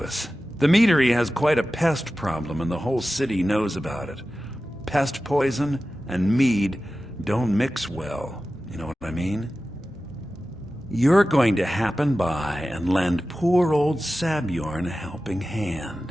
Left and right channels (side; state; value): both; normal; correlation 0.94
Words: us. The meadery has quite a pest problem, and the whole city knows about it. Pest poison and mead don't mix well, you know what I mean? You're going to happen by and lend poor old Sabjorn a helping